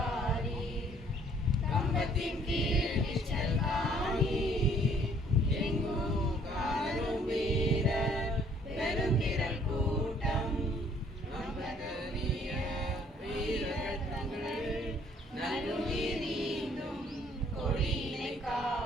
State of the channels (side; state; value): both; normal; correlation 0.61